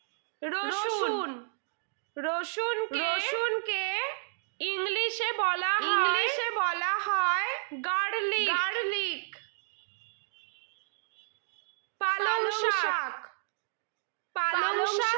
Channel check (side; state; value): left; silent; digital silence